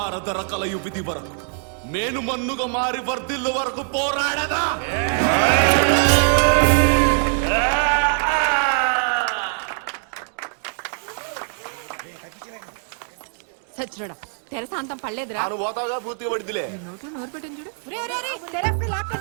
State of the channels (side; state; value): left; silent; 55 dB below the other